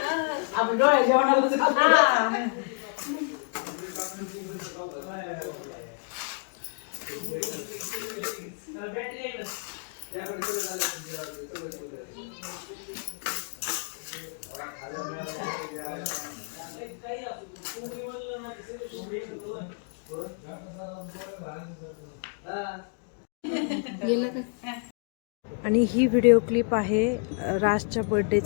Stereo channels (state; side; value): quieter; right; 39.8 dB